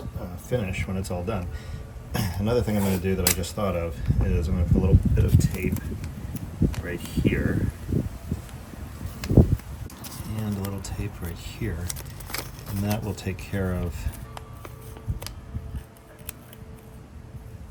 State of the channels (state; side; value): identical; both; correlation 1.00